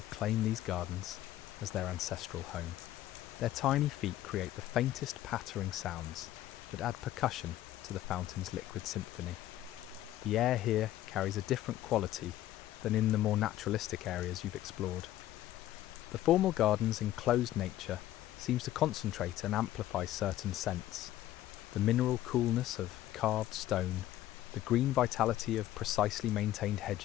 claimed these gardens as their ancestral home. Their tiny feet create the faintest pattering sounds that add percussion to the fountain's liquid symphony. The air here carries a different quality than in the more naturalistic areas you've explored. The formal garden's enclosed nature seems to concentrate and amplify certain scents. The mineral coolness of carved stone, the green vitality of precisely maintained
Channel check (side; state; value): right; quieter; 13.9 dB